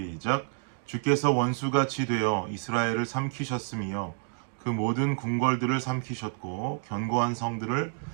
주께서 원수같이 되어 이스라엘을 삼키셨으며 그 모든 궁궐들을 삼키셨고 견고한 성들을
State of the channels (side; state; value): left; silent; 59 dB below the other